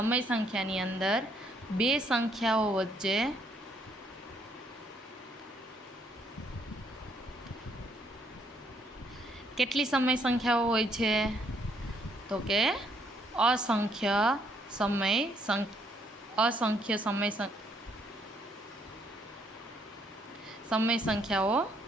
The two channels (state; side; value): normal; both; correlation 0.69